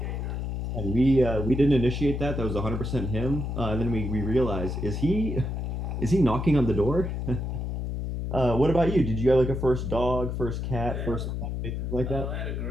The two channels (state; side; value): noise; left; hum, 3 dB below the sound